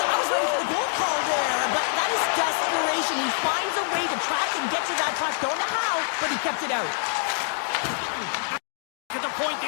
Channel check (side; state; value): right; silent; 61 dB below the other